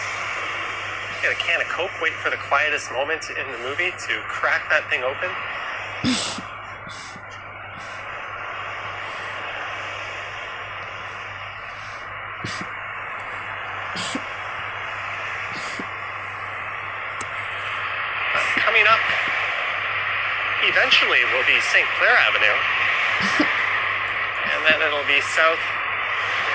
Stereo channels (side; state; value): left; noise; rumble, 26 dB below the sound